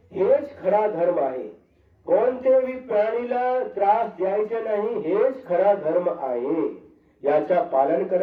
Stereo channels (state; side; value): identical; both; correlation 1.00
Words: हेच खरा धर्म आहे। कोणत्याही प्राणीला त्रास द्यायचा नाही, हेच खरा धर्म आहे। याचा पालन